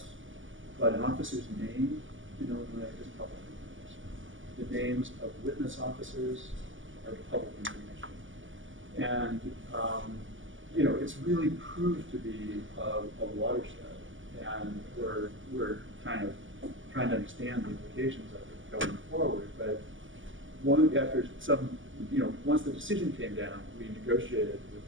but an officer's name in Illinois is public information. The names of witness officers are public information. And it's really proved to be a watershed, and we're kind of trying to understand the implications of it going forward. But after some, once the decision came down, we negotiated with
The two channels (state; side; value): late; left; 0.57 ms